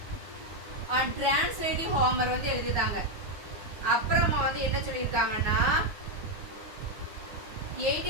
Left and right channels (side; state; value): left; late; 9.7 ms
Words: அண்ட் டிரான்ஸ்லேட்டிவ் ஹோமர் வந்து எழுதிட்டாங்க. அப்புறமா வந்து என்ன சொல்லியிருக்காங்கன்னா